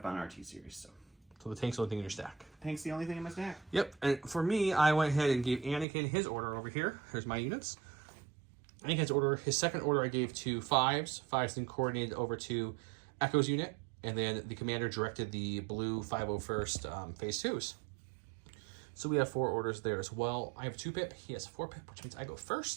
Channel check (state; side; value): drops out; left; at 5.9 s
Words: on RT series. So the tank's the only thing in your stack. Tank's the only thing in my stack. Yep, and for me, I went ahead and gave Anakin his order over here. Here's my units. Anakin's order, his second order I gave to 5s. 5s then coordinated over to Echo's unit, and then the commander directed the blue 501st phase 2s. So we have 4 orders there as well. I have 2-pip, he has 4-pip, which means I go